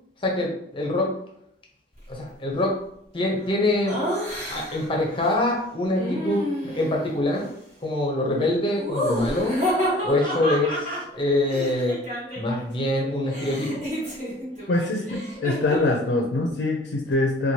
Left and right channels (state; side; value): normal; both; correlation 0.47